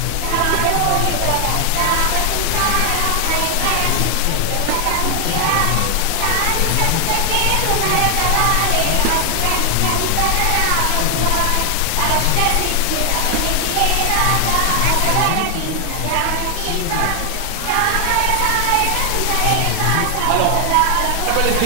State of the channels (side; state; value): both; different; correlation 0.00